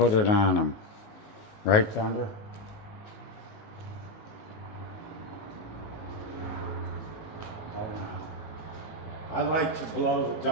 it on him. Right, Thunder? Hold on. I like to blow the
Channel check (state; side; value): late; right; 19 ms